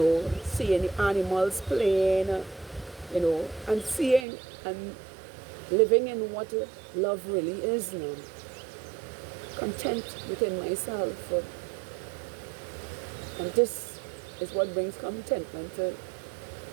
the animals playing, and seeing and living in what love really is now. Content within myself. And this is what brings contentment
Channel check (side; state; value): left; drops out; at 4.2 s